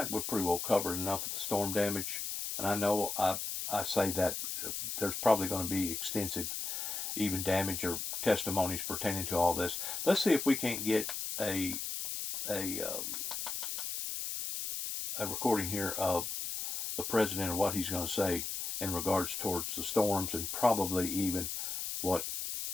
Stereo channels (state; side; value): noise; left; hiss, 4 dB below the sound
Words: we've pretty well covered enough of the storm damage, and I know I say that there's probably going to be extensive even damage or testimonies pertaining to all this. Let's see if we can't get a recording here of the president and what he's going to say in regards towards the storms and probably even what